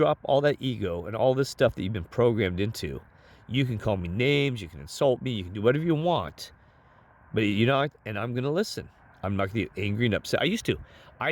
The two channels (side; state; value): both; identical; correlation 1.00